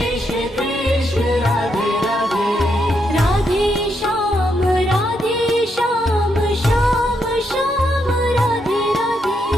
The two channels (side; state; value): both; normal; correlation 0.79